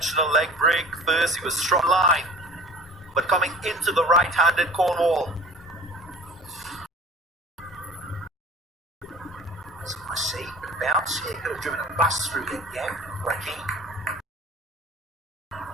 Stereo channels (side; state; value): both; normal; correlation 0.43